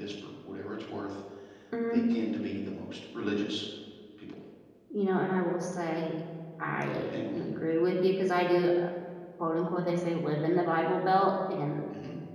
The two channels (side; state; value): both; identical; correlation 1.00